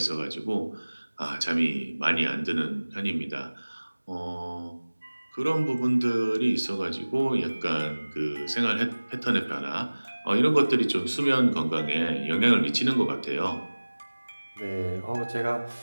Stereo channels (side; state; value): both; inverted; correlation -1.00